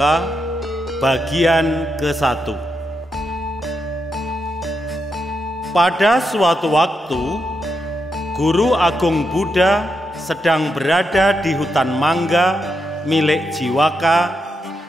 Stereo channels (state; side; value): normal; both; correlation 0.84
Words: bagian ke-1. Pada suatu waktu, Guru Agung Buddha sedang berada di hutan mangga milik Jiwaka